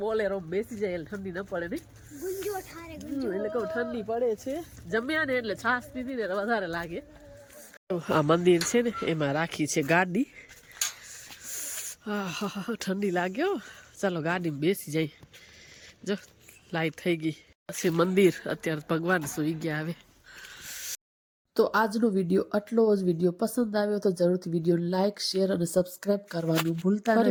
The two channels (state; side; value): identical; both; correlation 1.00